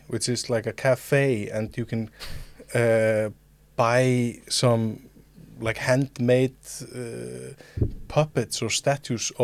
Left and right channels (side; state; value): both; identical; correlation 1.00